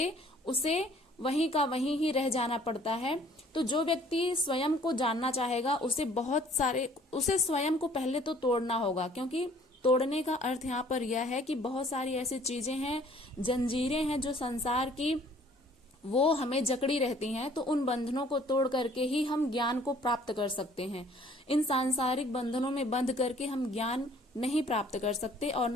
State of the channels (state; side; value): normal; both; correlation 0.56